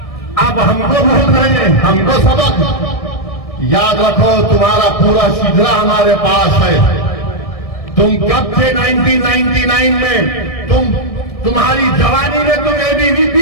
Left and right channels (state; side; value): late; right; 1.6 ms